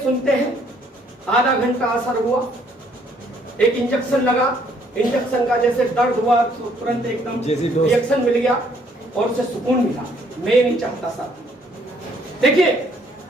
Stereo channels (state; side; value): normal; both; correlation 0.65